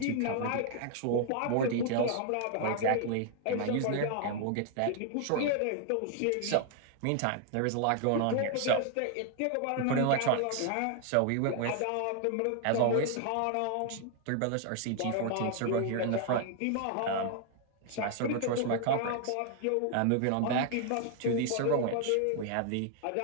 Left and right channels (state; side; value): different; both; correlation 0.00